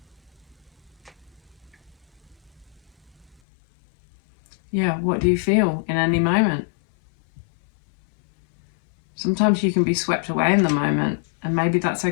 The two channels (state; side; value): drops out; right; at 3.4 s